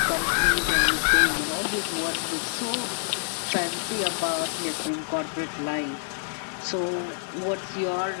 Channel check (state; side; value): silent; right; digital silence